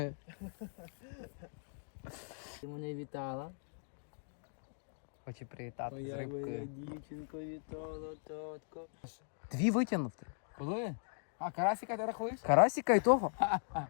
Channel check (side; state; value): right; silent; digital silence